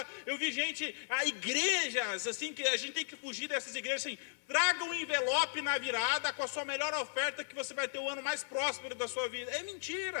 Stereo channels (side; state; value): right; silent; 54 dB below the other